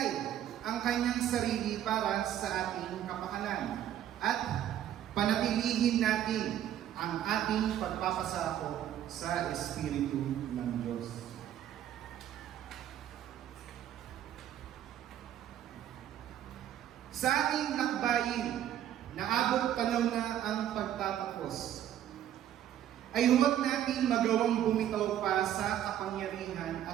ang kanyang sarili para sa ating kapakanan at panatilihin natin ang ating pagpapasako sa Espiritu ng Diyos. Sa ating lakbayin, naabot panahon na ang pagtatapos, ay huwag natin magawang bumitaw pa sa kapangyarihan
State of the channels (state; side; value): quieter; left; 11.2 dB